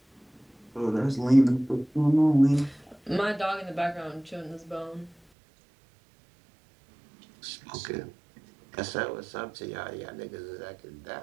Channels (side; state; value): left; drops out; at 5.2 s